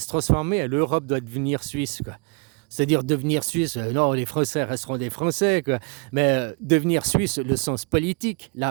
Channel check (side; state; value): left; quieter; 34.8 dB